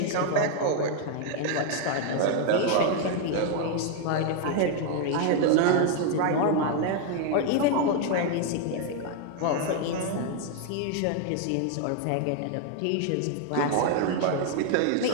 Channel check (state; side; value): different; both; correlation 0.00